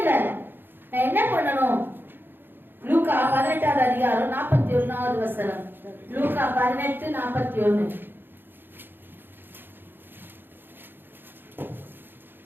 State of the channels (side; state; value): left; late; 0.099 ms